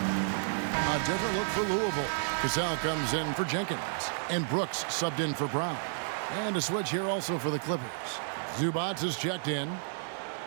Different look for Louisville. Cassell comes in for Jenkins. And Brooks subbed in for Brown. And a switch here also for the Clippers. Zubats is checked in.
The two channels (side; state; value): left; silent; digital silence